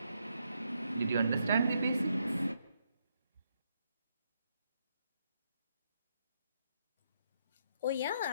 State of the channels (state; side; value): inverted; both; correlation -0.77